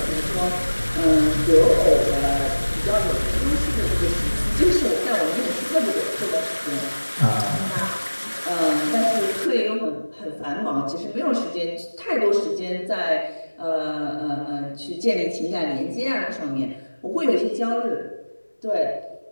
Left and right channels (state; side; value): inverted; both; correlation -1.00